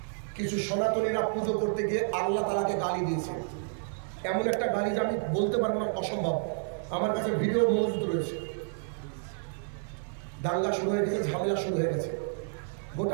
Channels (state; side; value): silent; left; digital silence